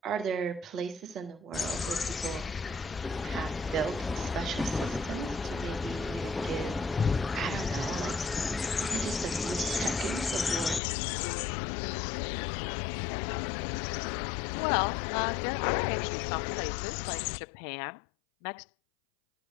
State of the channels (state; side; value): drops out; right; at 10.8 s